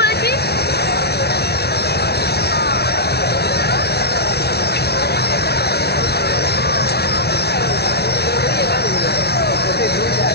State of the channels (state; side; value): late; right; 0.47 ms